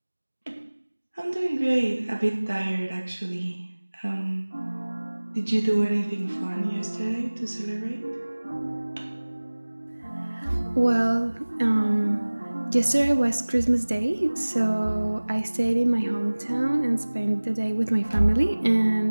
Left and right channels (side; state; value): both; inverted; correlation -1.00